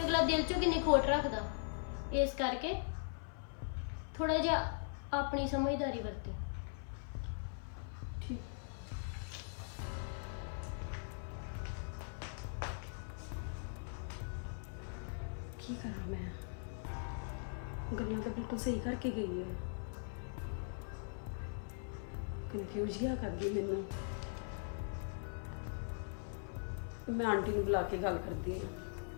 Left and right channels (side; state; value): right; silent; 51 dB below the other